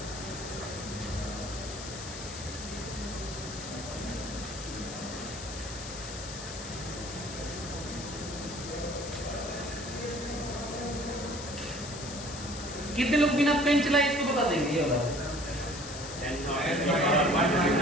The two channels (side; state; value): left; noise; hiss, 10 dB below the sound